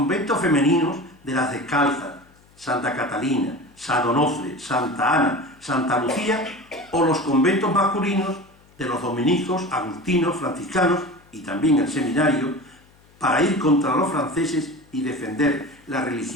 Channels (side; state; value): left; noise; hum, 29 dB below the sound